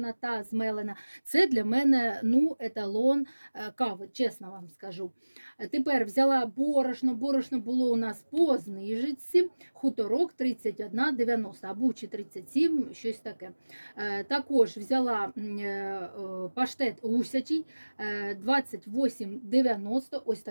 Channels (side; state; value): both; inverted; correlation -1.00